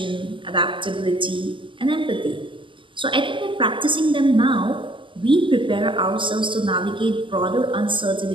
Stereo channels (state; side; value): late; left; 0.25 ms